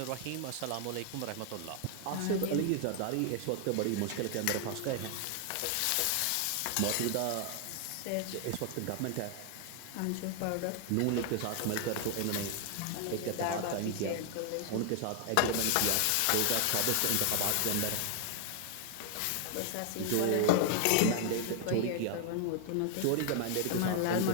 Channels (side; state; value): both; different; correlation 0.00